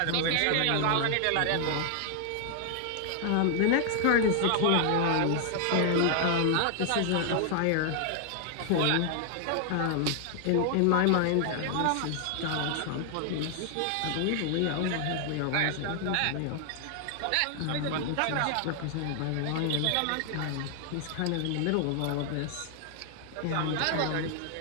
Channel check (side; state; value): both; different; correlation 0.00